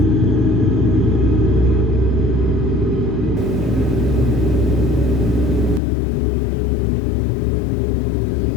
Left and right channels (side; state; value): right; drops out; at 5.8 s